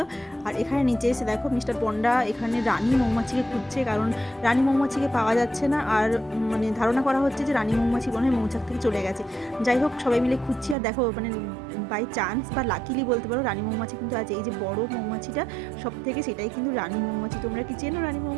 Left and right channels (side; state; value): left; drops out; at 10.8 s